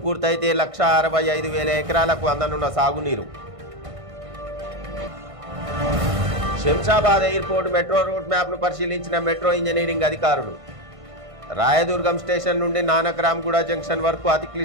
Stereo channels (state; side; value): late; left; 1.5 ms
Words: పూర్తయితే 1,65,000 ఎకరాలకు అందనున్న సాగునీరు శంషాబాద్ ఎయిర్పోర్ట్ మెట్రో రూట్ మ్యాప్ను పరిశీలించిన మెట్రో ఇంజనీరింగ్ అధికారులు రాయదుర్గం స్టేషన్ నుండి నానక్రామ్గూడ జంక్షన్ వరకు అతి